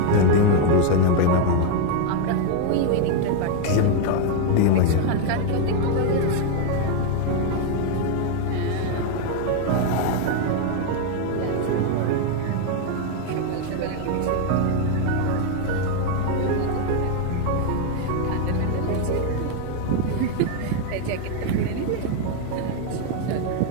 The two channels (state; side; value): different; both; correlation 0.01